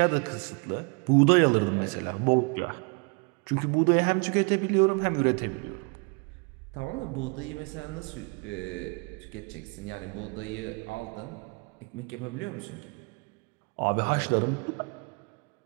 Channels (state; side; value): quieter; left; 33.4 dB